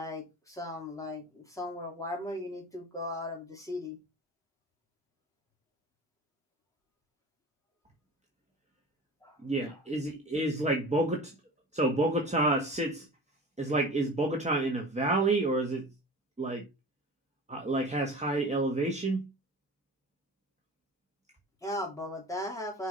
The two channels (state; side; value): normal; both; correlation 0.37